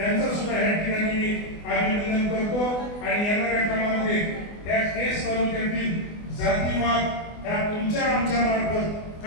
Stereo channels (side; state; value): right; late; 24 ms